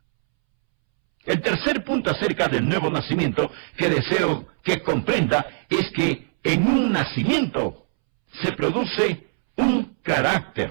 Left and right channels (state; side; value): silent; left; 64 dB below the other